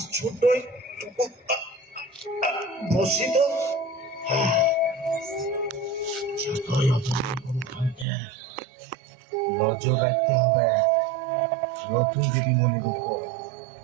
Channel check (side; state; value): left; drops out; at 8.1 s